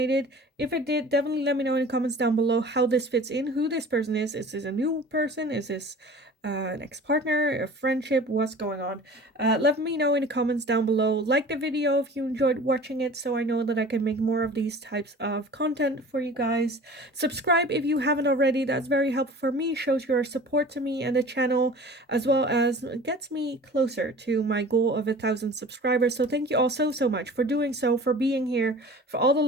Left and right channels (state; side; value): normal; both; correlation 0.42